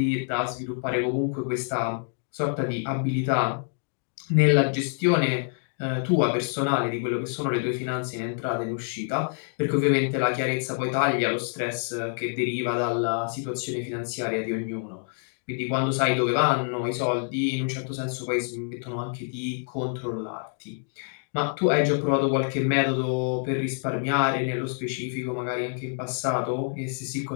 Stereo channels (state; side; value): silent; right; 60 dB below the other